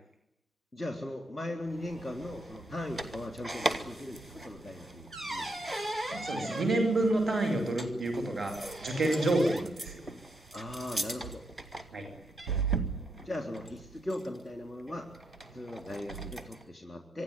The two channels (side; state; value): both; normal; correlation 0.80